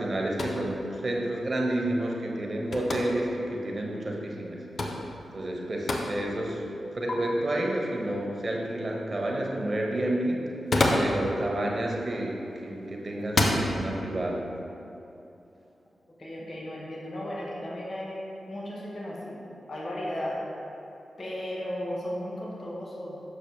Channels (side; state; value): both; normal; correlation 0.91